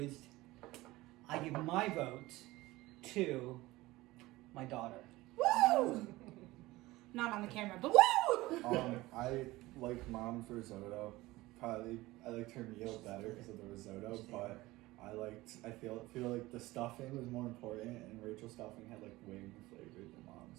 I give my vote to my daughter. Woo! Not on the camera, but woo! I like mom's risotto. Probably I liked her meal better because of the risotto, but I feel like the stuffing was more important, and Rachel's stuffing had like way more flavor than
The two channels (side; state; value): left; quieter; 19.0 dB